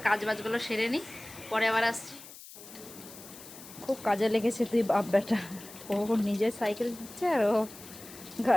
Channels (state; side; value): noise; left; hiss, 17 dB below the sound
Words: কাজ বাজগুলো সেরে নিই, পরে আবার আসছি। খুব কাজে লেগেছে তুই বাপ বেটা। ও নিজে সাইকেল দিচ্ছে আর ও